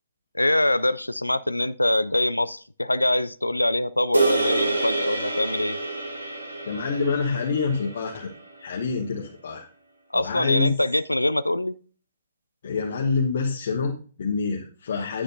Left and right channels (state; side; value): inverted; both; correlation -0.86